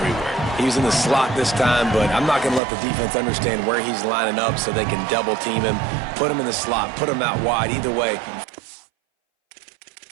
He was in the slot this time, but I'm not going to let the defense understand where he's lining up so they can double team him, put him in the slot, put him out wide. Either way,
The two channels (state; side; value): drops out; left; at 2.6 s